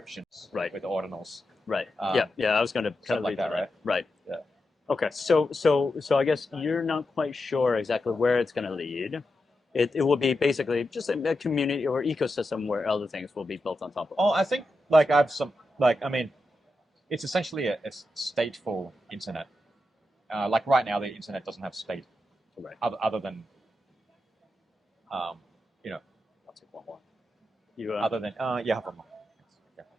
Right. with ordinals. Right. Um, Yeah. I was going to stuff like that, right? Right. Yeah. Okay. So I guess you're not quite sure exactly where it's going to lead. It will be basically just a community or ecosystem where other things will be built on top of. Oh, I think like I have some like I mean, it's essentially a stateful internet. Like right now, the internet doesn't have state, Right. other than I'll take one more. You other than yeah, have one more.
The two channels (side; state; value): both; normal; correlation 0.88